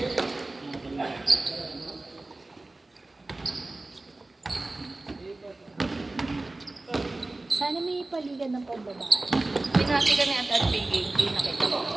Sana may paligan ng pambabae. Pinati kami at Pinky. Hindi nakita ko.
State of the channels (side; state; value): left; quieter; 3.0 dB